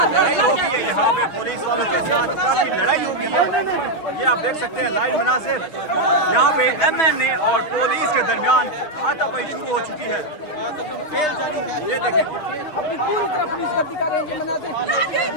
लड़ाई हो गई है यहाँ पे पुलिस वालों के साथ, काफी लड़ाई हो गई है। ये आप देख सकते हैं लाइव मनाजिर, यहाँ पे MNA और पुलिस के दरमियान हाथापाई शुरू हो चुकी है। ये देखें,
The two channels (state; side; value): late; right; 6.2 ms